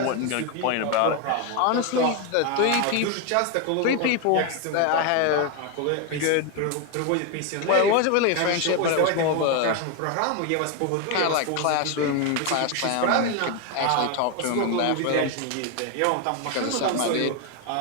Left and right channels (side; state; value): both; different; correlation 0.01